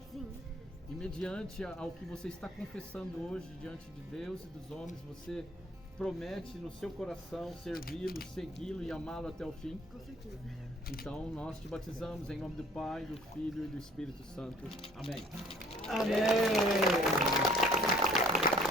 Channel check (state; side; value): normal; both; correlation 0.56